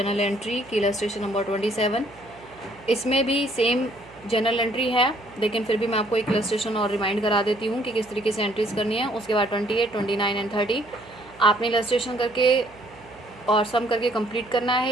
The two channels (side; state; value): right; noise; hum, 24 dB below the sound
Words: एंट्री की इलस्ट्रेशन नंबर 27। इसमें भी सेम जनरल एंट्री है, लेकिन फिर भी मैं आपको एक इलस्ट्रेशन और रिमाइंड करा देती हूँ कि किस तरीके से एंट्रीज करनी है। उसके बाद 28, 29 एंड 30 आपने इलस्ट्रेशन करके और सम करके कंप्लीट करना